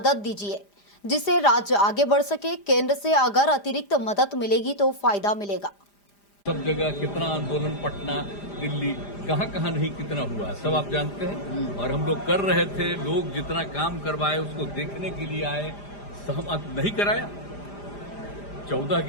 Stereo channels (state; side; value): late; right; 5.0 ms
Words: दीजिए जिससे राज्य आगे बढ़ सके। केंद्र से अगर अतिरिक्त मदद मिलेगी तो फायदा मिलेगा। सब जगह कितना आंदोलन, पटना, दिल्ली, कहाँ नहीं कितना हुआ है सब आप जानते हैं। और हम लोग कर रहे थे, लोग जितना काम करवाए उसको देखने के लिए आए, सहमत नहीं कराया। 14